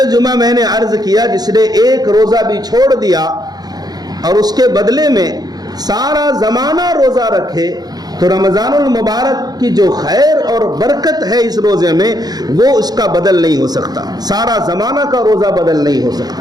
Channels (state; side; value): late; left; 0.19 ms